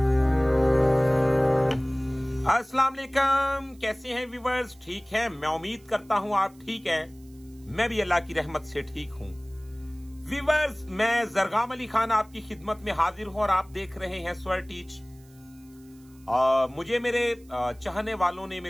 वालेकुम, कैसे हैं व्यूअर्स? ठीक है, मैं उम्मीद करता हूं आप ठीक हैं। मैं भी अल्लाह की रहमत से ठीक हूं। व्यूअर्स, मैं जरगाम अली खान आपकी खिदमत में हाजिर हूं और आप देख रहे हैं स्वर टीच। मुझे मेरे चाहने वालों ने,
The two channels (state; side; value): noise; right; hiss, 29 dB below the sound